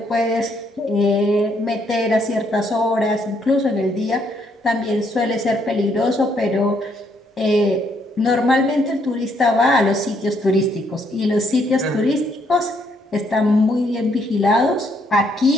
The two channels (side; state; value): both; normal; correlation 0.71